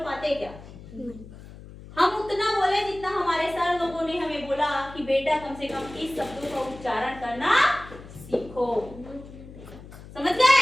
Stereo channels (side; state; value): left; noise; hum, 17 dB below the sound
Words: पाते क्या, हम उतना बोले जितना हमारे सर लोगों ने हमें बोला कि बेटा कम से कम इस शब्दों का उच्चारण करना सीखो, समझ